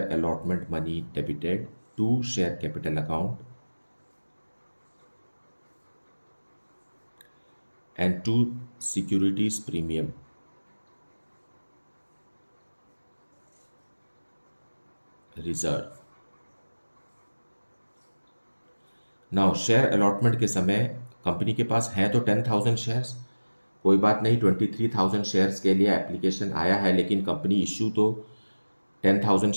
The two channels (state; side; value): inverted; both; correlation -1.00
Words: allotment money debited to share capital account and to securities premium reserve. Now share allotment के समय कंपनी के पास है तो 10,000 शेयर्स, कोई बात नहीं, 23,000 शेयर्स के लिए एप्लीकेशन आया है, लेकिन कंपनी इशू तो 10,000